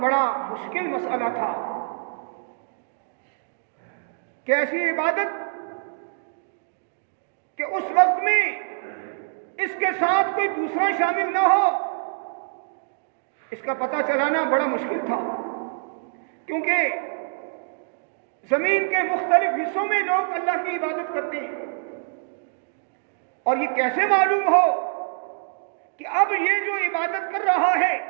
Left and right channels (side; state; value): left; silent; digital silence